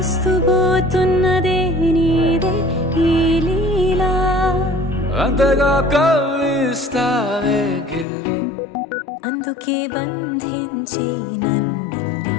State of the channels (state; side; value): drops out; right; at 8.1 s